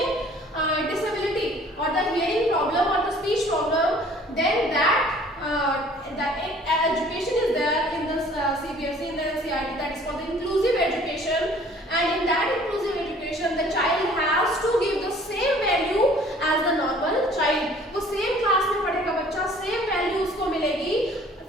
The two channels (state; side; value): normal; both; correlation 0.53